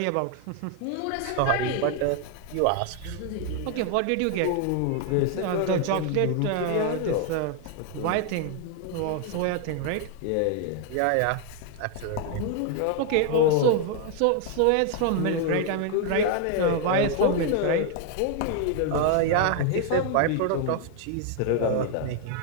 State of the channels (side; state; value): both; different; correlation 0.00